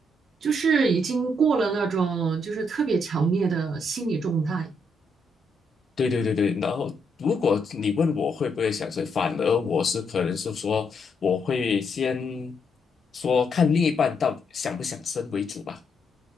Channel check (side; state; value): both; normal; correlation 0.76